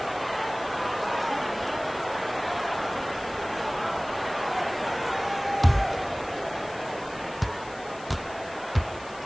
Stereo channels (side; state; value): left; noise; hiss, 19 dB below the sound